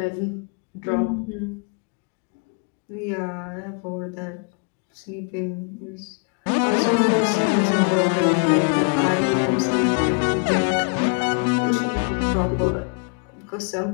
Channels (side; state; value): right; quieter; 37.4 dB